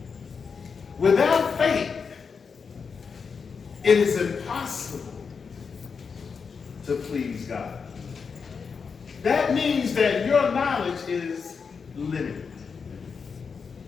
Without faith, it is impossible to please God. That means that your knowledge is limited.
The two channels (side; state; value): right; quieter; 5.6 dB